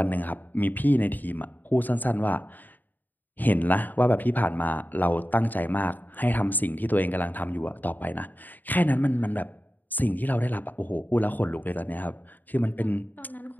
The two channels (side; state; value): right; late; 0.087 ms